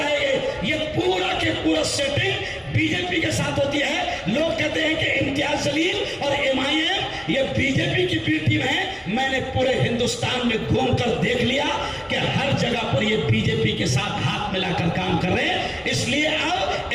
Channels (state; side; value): identical; both; correlation 1.00